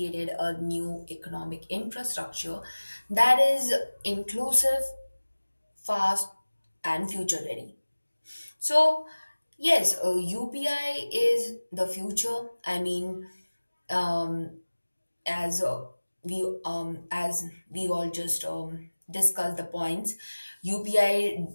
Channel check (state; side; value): inverted; both; correlation -1.00